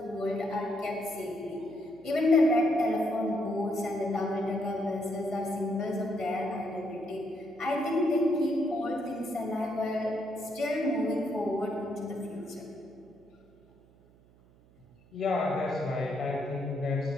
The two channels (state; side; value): noise; right; hum, 28 dB below the sound